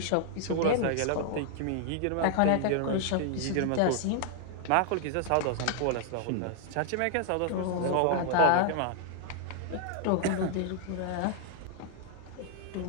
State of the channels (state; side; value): different; both; correlation 0.00